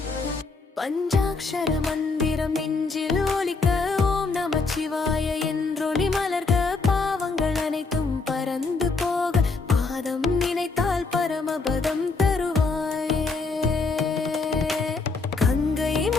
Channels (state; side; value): quieter; right; 4.1 dB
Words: பஞ்சாக்ஷர மந்திரம் நெஞ்சில் ஒலிக்க ஓம் நமச்சிவாய என்றொளி மலர்க, பாவங்கள் அனைத்தும் பறந்து போக பாதம் நினைத்தால் பரமபதம் தருவாயே. கங்கை